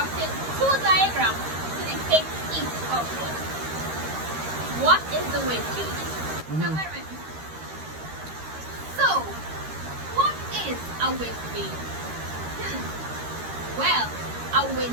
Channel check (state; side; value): late; left; 13 ms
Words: two diagrams to depict each of them. What is the wind gauge? So, what is a wind vane? Well, a